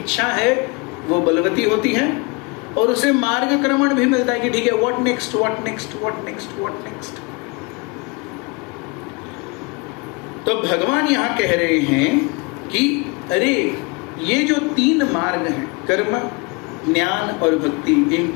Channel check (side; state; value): right; quieter; 28.5 dB